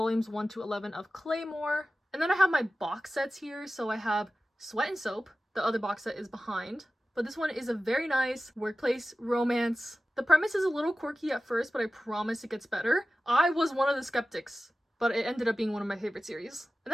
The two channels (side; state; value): both; normal; correlation 0.95